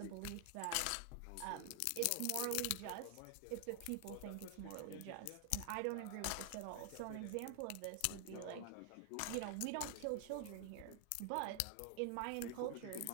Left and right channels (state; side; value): different; both; correlation 0.00